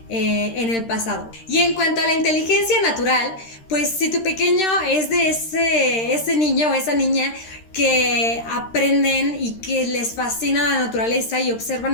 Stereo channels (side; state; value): right; late; 13 ms